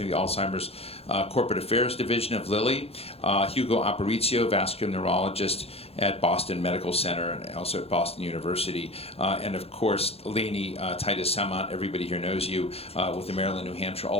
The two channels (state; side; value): late; right; 0.29 ms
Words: of the Alzheimer's Corporate Affairs Division of Lilly, Hugo Aparicio, vascular neurologist at Boston Medical Center and also at Boston University, and of course Lainey, Titus, Samant, everybody here knows you, with the Maryland, New Hampshire